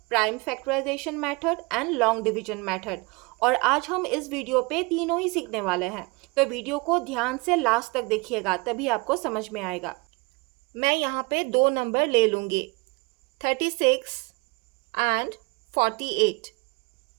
prime factorization method and long division method. और आज हम इस वीडियो पे तीनों ही सीखने वाले हैं, तो वीडियो को ध्यान से लास्ट तक देखिएगा, तभी आपको समझ में आएगा। मैं यहाँ पे 2 नंबर ले लूँगी, 36 एंड 48,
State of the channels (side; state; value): left; quieter; 27.6 dB